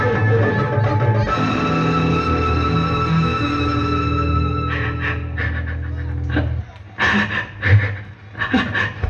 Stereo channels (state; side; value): identical; both; correlation 1.00